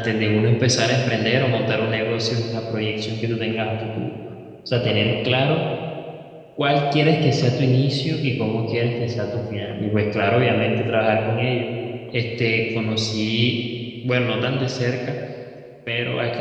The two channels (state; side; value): identical; both; correlation 1.00